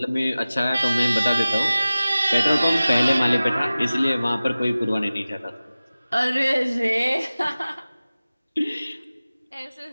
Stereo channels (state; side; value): inverted; both; correlation -0.97